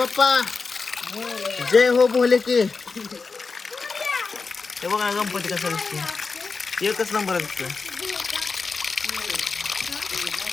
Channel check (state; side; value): quieter; right; 4.5 dB